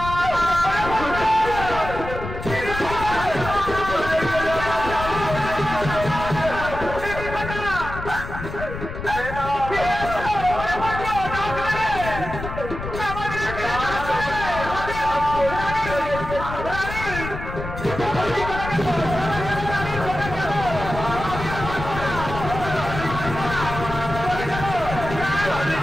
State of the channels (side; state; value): left; noise; rumble, 8 dB below the sound